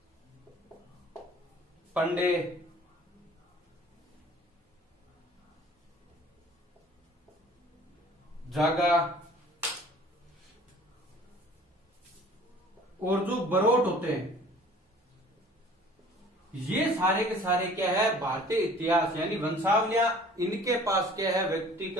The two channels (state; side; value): normal; both; correlation 0.49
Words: पंडे, जागा और जो बरोट होते हैं, ये सारे के सारे क्या है, भारतीय इतिहास यानी वंशावलियां, इनके पास क्या है, व्यक्ति